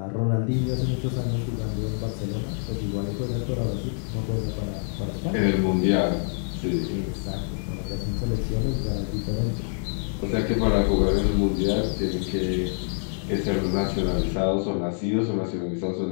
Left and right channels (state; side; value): silent; right; 61 dB below the other